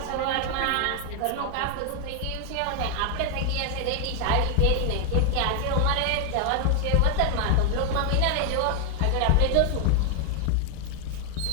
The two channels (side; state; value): both; different; correlation 0.00